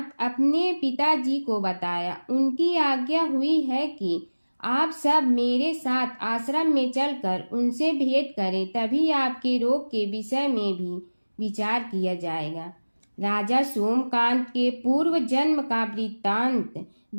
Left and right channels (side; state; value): both; inverted; correlation -1.00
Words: अपने पिताजी को बताया। उनकी आज्ञा हुई है कि आप सब मेरे साथ आश्रम में चलकर उनसे भेंट करें, तभी आपके रोग के विषय में भी विचार किया जाएगा। राजा सोमकांत के पूर्व जन्म का वृत्तांत